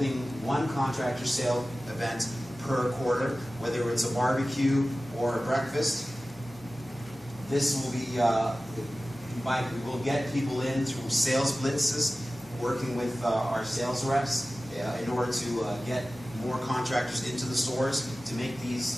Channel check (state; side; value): normal; both; correlation 0.96